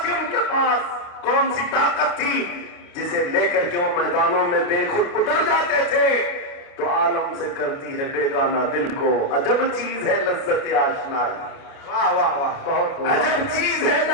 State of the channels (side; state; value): right; late; 28 ms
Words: تھی ان کے پاس, کون سی طاقت تھی جسے لے کر کے وہ میدانوں میں بے خود اتر جاتے تھے. تو عالم سے کرتی ہے بیگانہ دل کو, عجب چیز ہے لذت آشنائی. واہ واہ واہ, بہت عجب چیز ہے